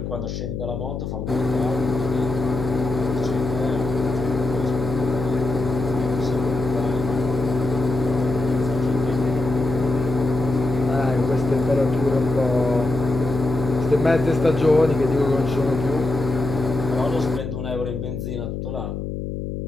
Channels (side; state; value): left; noise; hum, 5 dB below the sound